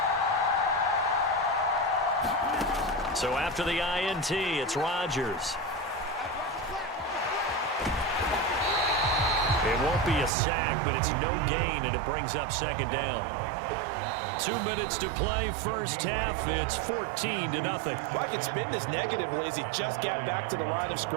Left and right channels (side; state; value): left; drops out; at 10.3 s